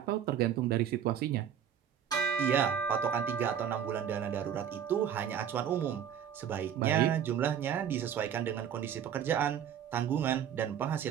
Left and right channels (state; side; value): quieter; left; 8.9 dB